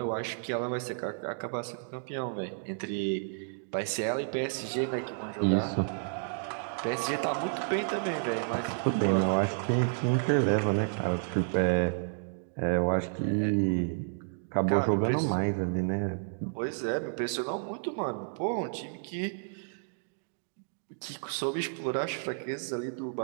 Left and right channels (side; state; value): left; silent; digital silence